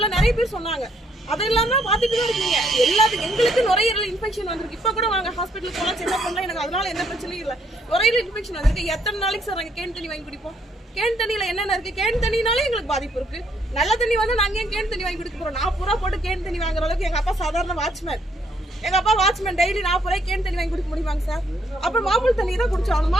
நிறைய பேர் சொன்னாங்க. அதெல்லாம் தான் பாத்துட்டு தான் இருக்கீங்க. எல்லாத்துக்கும் எங்களுக்கு நுரையீரல் இன்ஃபெக்ஷன் வந்திருக்கு. இப்ப கூட வாங்க ஹாஸ்பிட்டலுக்கு போனா செக்அப் பண்ணலாம், எனக்கு அதனால எந்த பிரச்சனையும் இல்லை. நுரையீரல் இன்ஃபெக்ஷன் வந்திருக்கு. எத்தனை நாளைக்கு சார் நாங்க கேன் தண்ணி வாங்கி குடிப்போம்? கேன் தண்ணியில என்னென்ன இருக்கு? கேன் தண்ணினாலே எங்களுக்கு பாதிப்பு இருக்கு. நல்ல தண்ணி வந்து நாங்க ஏன் கேன் தண்ணி வாங்கி குடிக்க போறோம்? 40 ரூபா போட்டு கேன் தண்ணி வாங்குற அளவுக்கு எங்க அப்பா சாதாரண வாட்ச்மேன். எங்க அப்பா வாட்ச்மேன் டெய்லி 40 ரூபாய் கேன் தண்ணி வாங்கி குடிக்க முடியுமாங்க சார்? அப்புறம் மாமூல் தண்ணி தான் குடிச்சோம்.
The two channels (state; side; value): normal; both; correlation 0.70